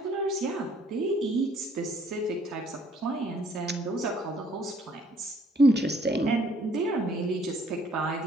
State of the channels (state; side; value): normal; both; correlation 0.62